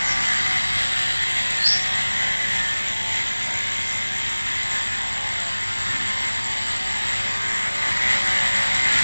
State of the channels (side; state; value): both; inverted; correlation -1.00